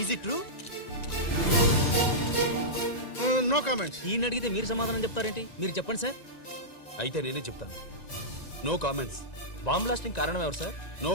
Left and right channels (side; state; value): right; late; 1.9 ms